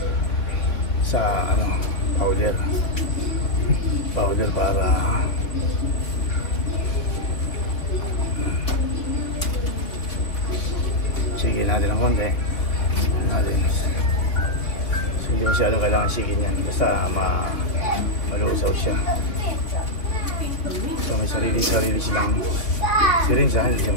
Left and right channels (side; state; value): right; late; 3.5 ms